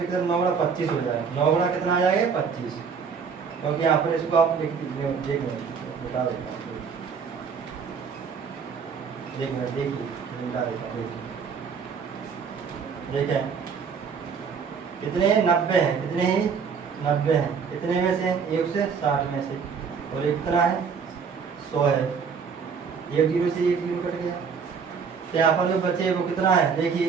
कितना? 9 गुना 25 हो जाएगा। 9 गुना कितना आ जाएगा? 25। क्योंकि यहाँ पर इसको आप देख बता देता हूँ, देखिए बता देता हूँ। देखें कितने? 90 हैं। कितने ही? 90 हैं। कितने में से? 1 से 60 में से। और ये कितना है? 100 है। 1 जीरो से 1 जीरो कट गया। तो यहाँ पर जो बचे वो कितना है? देखिए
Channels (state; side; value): quieter; left; 6.1 dB